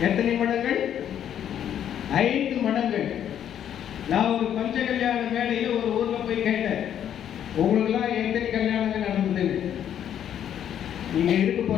எத்தனை மடங்கள்? 5 மடங்கள். நான் ஒரு பஞ்ச கல்யாண மேடையில் ஒரு ஊர்ல போய் கேட்டேன், உங்களுக்குலாம் எத்தனை கல்யாணங்கள் நடந்தது? நீங்க இருக்க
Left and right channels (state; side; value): quieter; right; 9.9 dB